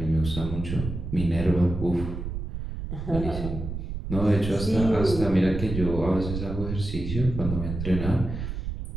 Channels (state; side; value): noise; right; rumble, 6 dB below the sound